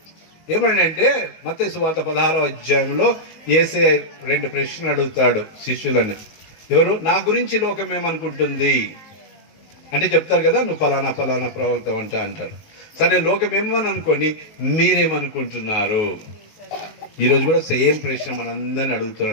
ఏమంటే మత్తయి సువార్త 16వ అధ్యాయంలో యేసయ్య 2 ప్రశ్నలు అడుగుతాడు శిష్యులని. ఎవరు? నా గురించి లోకం ఏమనుకుంటుంది అంటే చెప్తారు కదా, నువ్వు ఫలానా ప్రవక్త అంటారు. సరే, లోకం ఏమని అనుకోని మీరేమనుకుంటున్నారు? ఈరోజు కూడా సేమ్ ప్రశ్న మనందరిని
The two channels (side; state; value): right; late; 19 ms